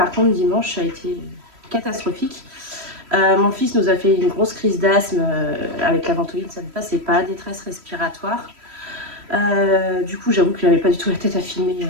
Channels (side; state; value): left; late; 3.1 ms